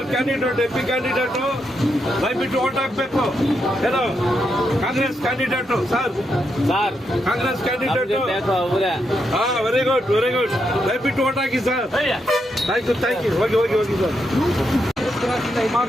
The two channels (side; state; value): both; normal; correlation 0.82